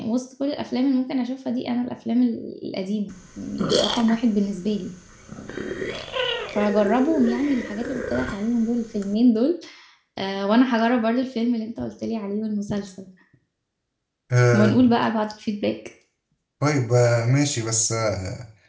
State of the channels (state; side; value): identical; both; correlation 1.00